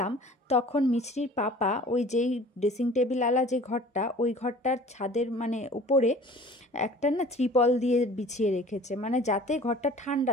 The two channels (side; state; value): both; normal; correlation 0.46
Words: তখন মিছরির পাপা ওই যেই ড্রেসিং টেবিল আলা যে ঘরটা, ওই ঘরটার ছাদের মানে উপরে একটা না ত্রিপল দিয়ে বিছিয়ে রেখেছে, মানে যাতে ঘরটা ঠান্ডা